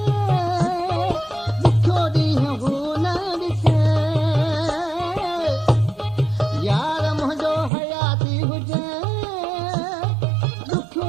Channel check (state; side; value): drops out; left; at 7.7 s